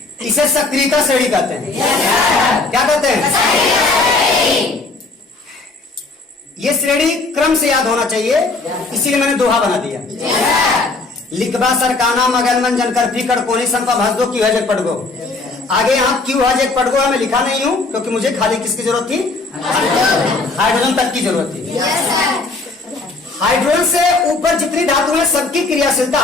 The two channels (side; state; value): right; quieter; 3.5 dB